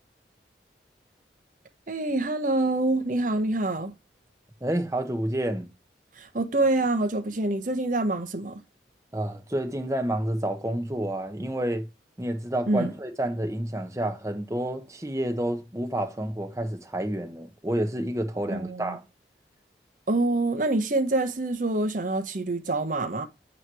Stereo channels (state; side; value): normal; both; correlation 0.55